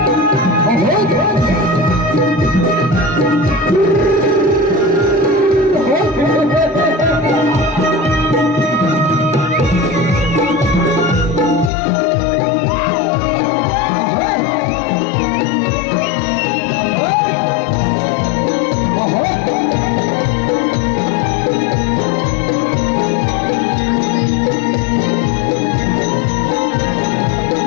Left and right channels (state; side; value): drops out; right; at 11.7 s